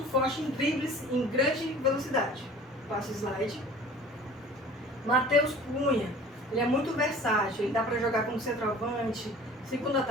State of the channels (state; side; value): normal; both; correlation 0.45